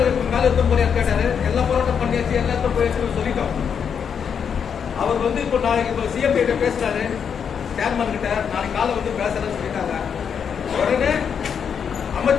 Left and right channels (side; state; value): right; quieter; 7.2 dB